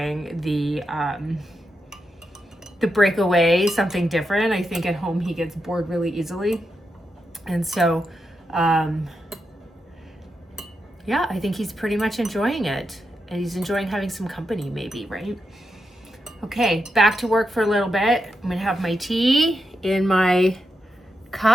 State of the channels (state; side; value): normal; both; correlation 0.86